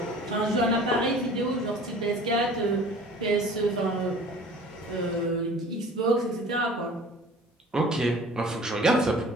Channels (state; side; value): normal; both; correlation 0.45